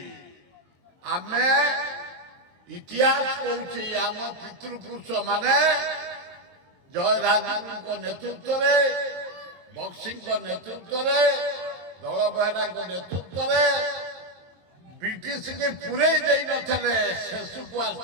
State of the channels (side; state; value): left; late; 22 ms